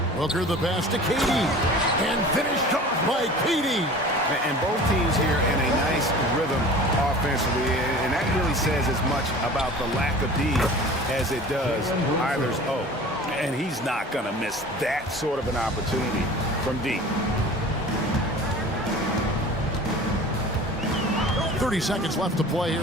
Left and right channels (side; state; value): both; normal; correlation 0.41